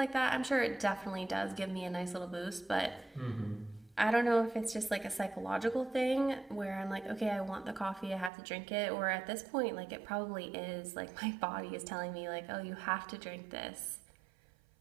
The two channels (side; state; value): left; drops out; at 8.3 s